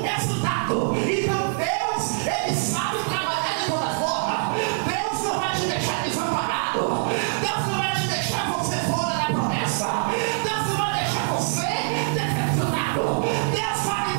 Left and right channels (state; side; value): silent; left; 62 dB below the other